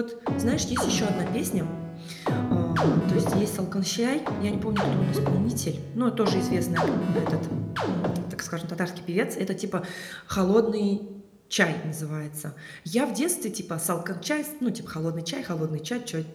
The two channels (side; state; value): both; identical; correlation 1.00